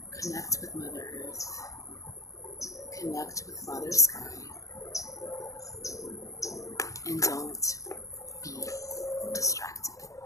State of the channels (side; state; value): right; late; 0.16 ms